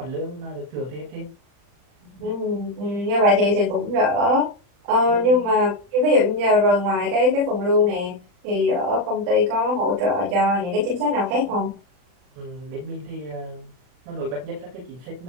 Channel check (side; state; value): left; late; 40 ms